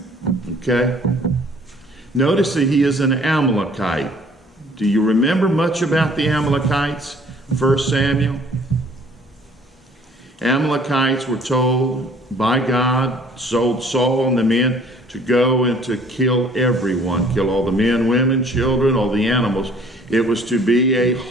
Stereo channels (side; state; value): both; normal; correlation 0.56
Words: Okay? Notice that he is an Amalekite. Do you remember much about the Amalekites? 1 Samuel? Amalekites were told by God, told Saul and the men to go and to kill everyone, kill all the men, women, children, all the animals. It was to be a